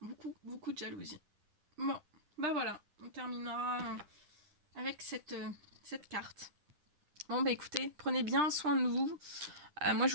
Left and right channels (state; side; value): late; left; 10 ms